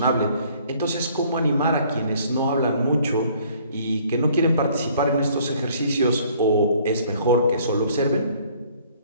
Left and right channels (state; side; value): inverted; both; correlation -0.58